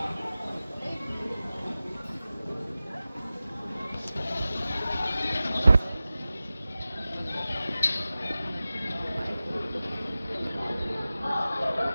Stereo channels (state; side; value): inverted; both; correlation -0.95